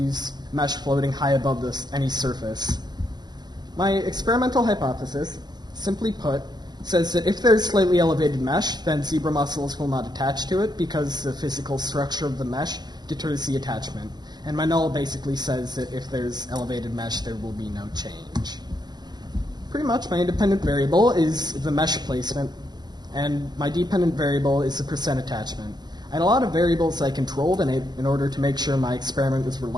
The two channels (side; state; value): left; late; 0.20 ms